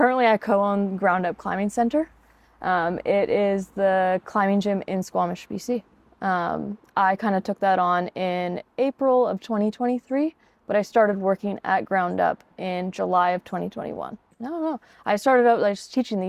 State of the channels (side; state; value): both; identical; correlation 1.00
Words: I co-own Ground Up Climbing Center. It is the climbing gym in Squamish, BC. I kind of took that on in April of 2023, but I started working at Ground Up in July of 2021. No. I started out like just teaching the